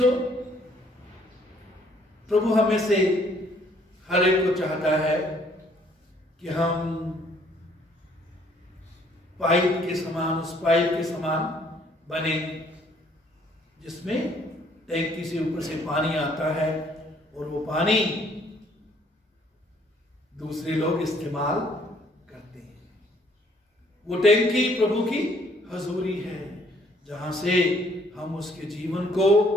प्रभु हमें से हर एक को चाहता है कि हम पाइप के समान, उस पाइप के समान बने जिसमें टैंकी से ऊपर से पानी आता है और वो पानी दूसरे लोग इस्तेमाल करते हैं। वो टैंकी प्रभु की हजूरी है, जहां से हम उसके जीवन को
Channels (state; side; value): normal; both; correlation 0.63